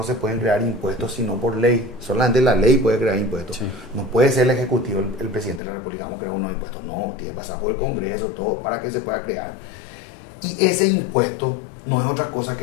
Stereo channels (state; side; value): drops out; right; at 5.6 s